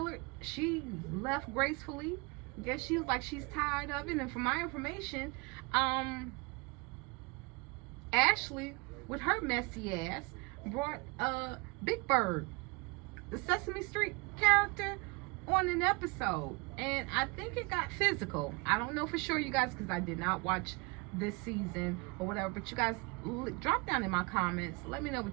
she left gracefully. I guess she was like she's tired of it. And from my information, Ashley, with her messy ass, brought Big Bird, the Sesame Street character, on an episode, and I think it got physical. I don't know for sure, you guys, because I did not watch this season or whatever, but you guys drop down in my comments, let me know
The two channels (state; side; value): quieter; left; 28.4 dB